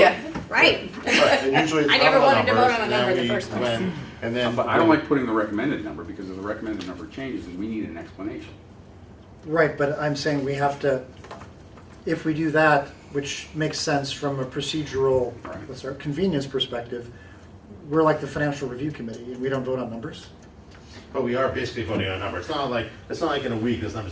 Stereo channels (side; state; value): both; identical; correlation 1.00